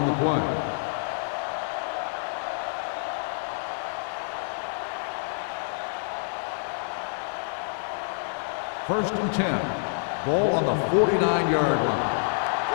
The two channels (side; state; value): right; silent; digital silence